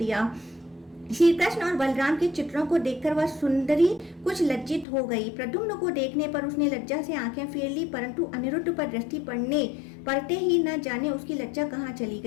श्री कृष्ण और बलराम के चित्रों को देखकर वह सुंदरी कुछ लज्जित हो गई। प्रद्युम्न को देखने पर उसने लज्जा से आंखें फेर ली, परंतु अनिरुद्ध पर दृष्टि पड़ते ही न जाने उसकी लज्जा कहाँ चली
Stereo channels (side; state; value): right; drops out; at 4.9 s